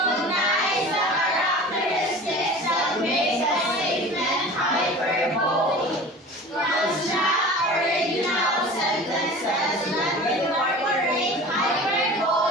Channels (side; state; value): both; normal; correlation 0.39